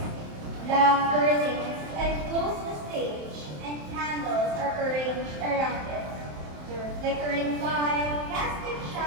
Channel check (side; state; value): left; late; 27 ms